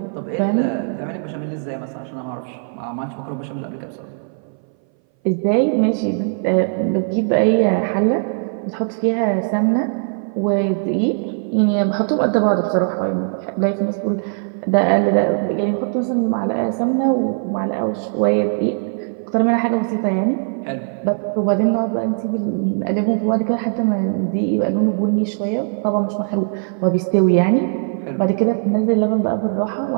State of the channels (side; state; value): left; silent; 61 dB below the other